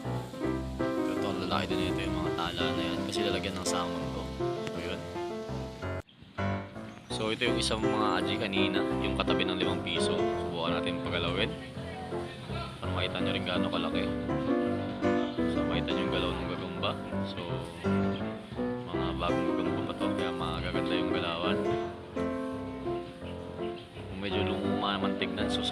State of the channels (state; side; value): identical; both; correlation 1.00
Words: Ito ang lalaki din ito, yung mga tala na yan. Kasi lalagyan ng salmon to. So yun. So ito yung isang mga aji kanina, yung katabi ng 5 piso. Subukan natin pagalawin para makita nyo rin gaano kalaki. So makita nyo yung galaw ng gagamba. So mga bagong gagamba pa to, kaya magaganda yung galawan. Kung medyo lumuma naman tignan, so